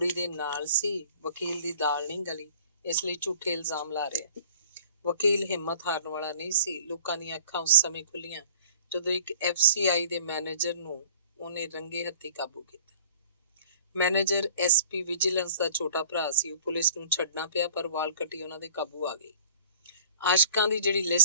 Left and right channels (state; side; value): inverted; both; correlation -0.49